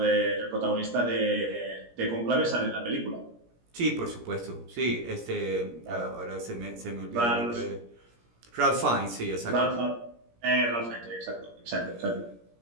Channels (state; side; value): late; left; 17 ms